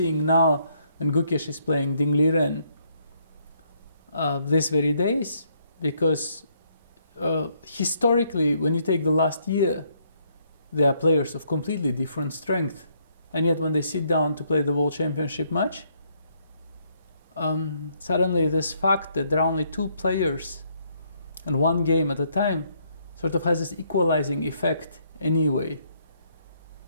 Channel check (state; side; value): inverted; both; correlation -0.70